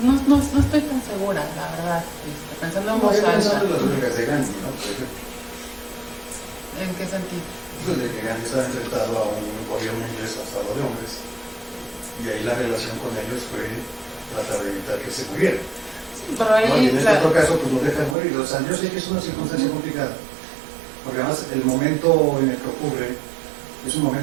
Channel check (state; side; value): drops out; left; at 18.2 s